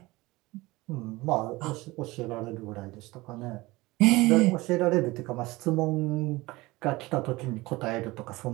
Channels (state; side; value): quieter; left; 20.9 dB